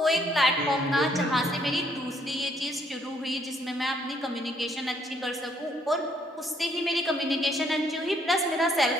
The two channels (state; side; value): normal; both; correlation 0.68